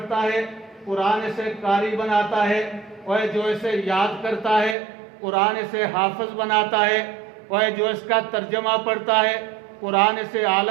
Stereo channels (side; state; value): left; drops out; at 4.8 s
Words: ہے قرآن اسے قاری بناتا ہے، اور جو اسے یاد کرتا ہے قرآن اسے حافظ بناتا ہے، اور جو اس کا ترجمہ پڑھتا ہے قرآن اسے